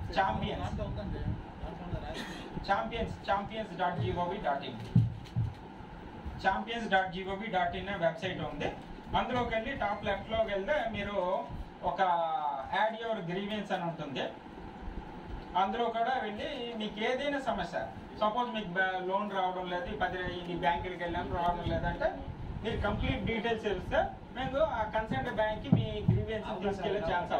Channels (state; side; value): identical; both; correlation 1.00